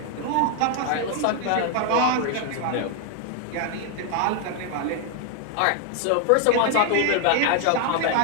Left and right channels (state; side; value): different; both; correlation 0.00